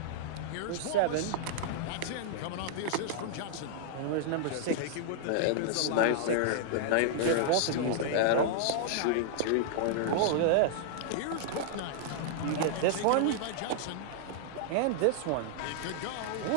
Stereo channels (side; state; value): both; different; correlation -0.01